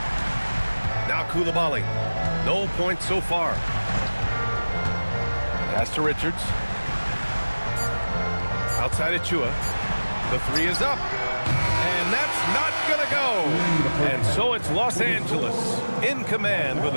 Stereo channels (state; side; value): inverted; both; correlation -1.00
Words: Now Coulibaly. No points so far. Pass to Richards. Outside Achua. The 3 is up. And that's not going to go. And so it's Los Angeles in command with